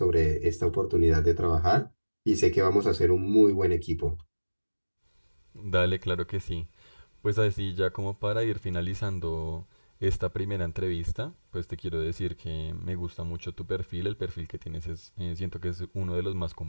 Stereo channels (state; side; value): inverted; both; correlation -1.00